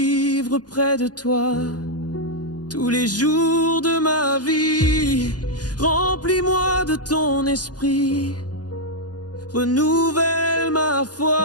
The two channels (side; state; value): right; late; 0.69 ms